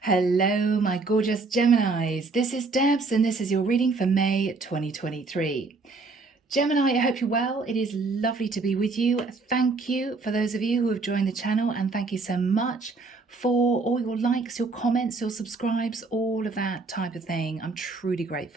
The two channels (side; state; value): left; quieter; 3.9 dB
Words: Hello, my gorgeous Geminis. This is Debs, and this is your reading for May 2023. Gemini, I hope you're well. It is lovely to be with you. Thank you for those of you who have joined the channel, and thank you so much for all your likes, your comments, your subscribes, all of that type of thing. I'm truly